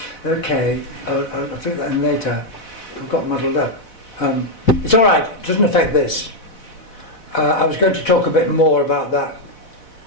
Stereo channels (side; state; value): right; late; 4.1 ms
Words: Okay, I'll figure that in later. I've got muddled up. It's all right. It doesn't affect this. I was going to talk a bit more about